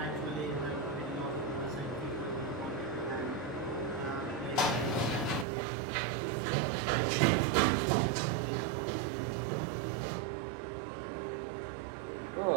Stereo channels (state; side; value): drops out; left; at 5.5 s